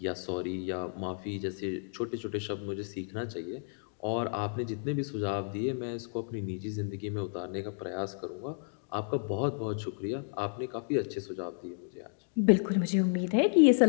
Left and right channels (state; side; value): silent; right; digital silence